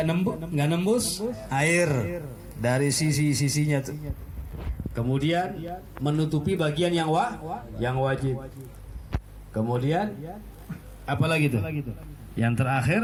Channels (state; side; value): identical; both; correlation 1.00